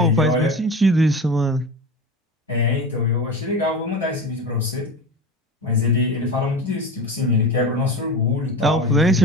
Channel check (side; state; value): both; normal; correlation 0.29